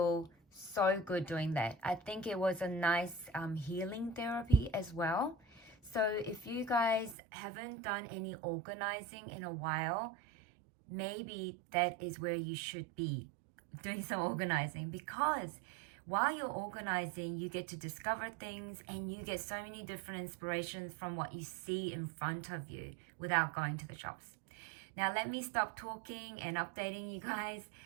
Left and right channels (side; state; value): left; drops out; at 7.2 s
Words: so good doing that. I think it was a nice healing therapy as well. So if you guys haven't done any organizing in a while, maybe that is where you should be doing some organizing, because while you're organizing, you get to discover things and you get so many different inspirations from what you see in front of you without going to the shops. Now let me stop talking and updating you guys.